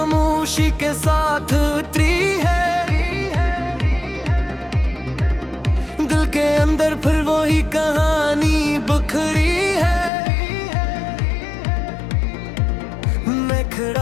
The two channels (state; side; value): drops out; right; at 10.1 s